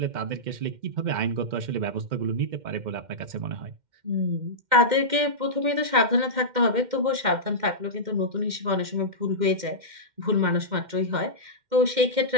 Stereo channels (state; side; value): late; left; 2.1 ms